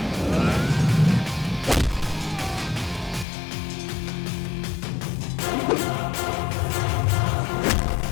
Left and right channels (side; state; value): right; drops out; at 3.2 s